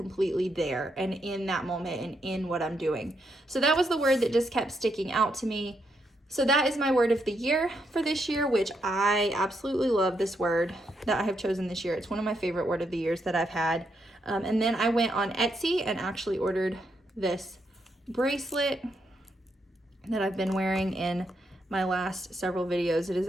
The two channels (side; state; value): both; normal; correlation 0.79